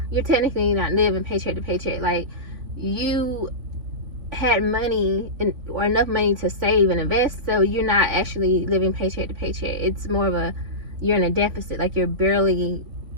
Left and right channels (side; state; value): left; late; 3.5 ms